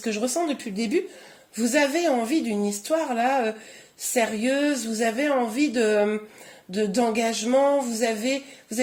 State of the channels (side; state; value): both; identical; correlation 1.00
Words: que je ressens depuis le début, vous avez envie d'une histoire là sérieuse, vous avez envie d'engagement, vous avez